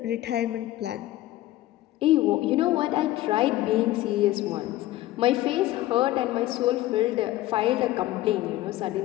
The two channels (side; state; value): right; quieter; 15.7 dB